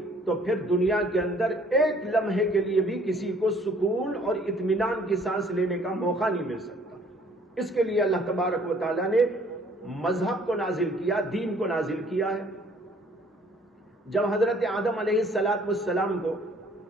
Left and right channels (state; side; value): normal; both; correlation 0.58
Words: تو پھر دنیا کے اندر ایک لمحے کے لیے بھی کسی کو سکون اور اطمینان کی سانس لینے کا موقع نہیں مل سکتا. اس کے لیے اللہ تبارک و تعالیٰ نے مذہب کو نازل کیا، دین کو نازل کیا ہے. جب حضرت آدم علیہ السلام کو